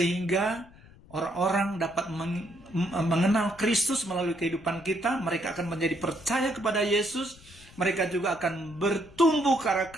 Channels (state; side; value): noise; left; rumble, 23 dB below the sound